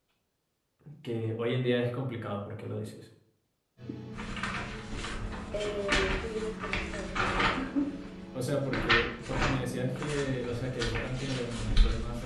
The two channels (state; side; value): identical; both; correlation 1.00